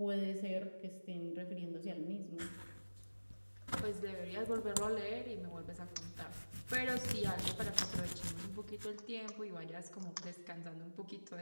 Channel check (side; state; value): both; inverted; correlation -1.00